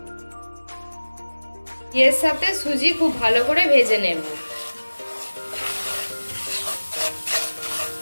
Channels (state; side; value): inverted; both; correlation -1.00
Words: এর সাথে সুজি খুব ভালো করে ভেজে নেব।